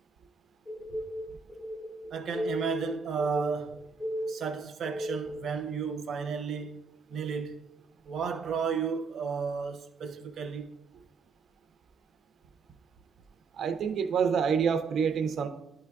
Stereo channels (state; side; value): quieter; left; 5.2 dB